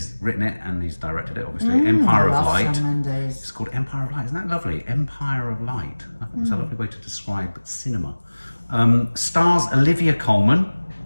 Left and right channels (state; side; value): inverted; both; correlation -1.00